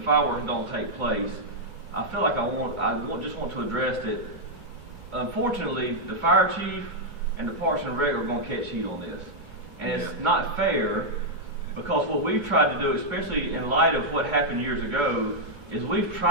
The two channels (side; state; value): left; late; 2.2 ms